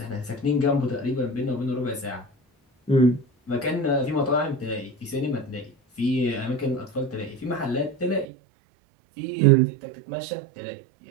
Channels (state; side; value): drops out; left; at 8.2 s